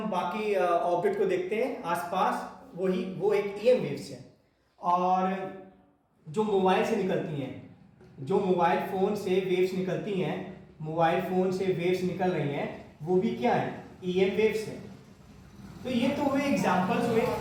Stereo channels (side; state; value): both; identical; correlation 1.00